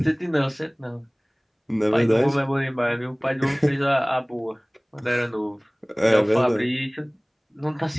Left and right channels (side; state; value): both; identical; correlation 1.00